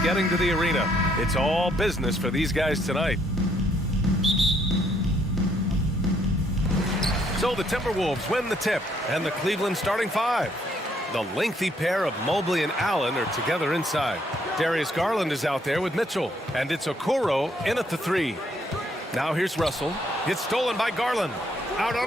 getting to the arena. It's all business for these guys tonight. So the Timberwolves win the tip, and the Cleveland starting five. The lengthy pair of Mobley and Allen are together inside. Darius Garland is out there with Mitchell, and it's Okoro in at the three. Now here's Russell. It's stolen by Garland. Out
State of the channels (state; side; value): normal; both; correlation 0.70